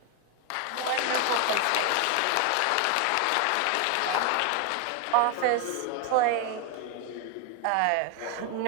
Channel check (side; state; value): both; different; correlation 0.01